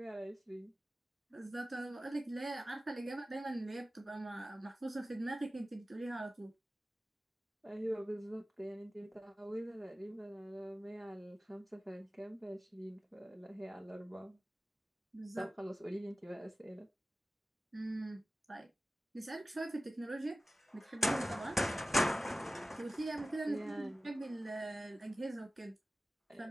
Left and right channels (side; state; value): both; normal; correlation 0.96